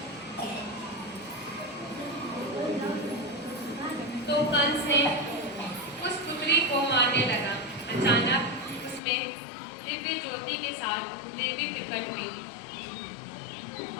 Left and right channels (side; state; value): right; drops out; at 9.0 s